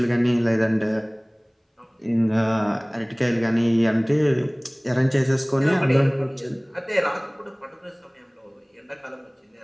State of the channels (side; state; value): both; identical; correlation 1.00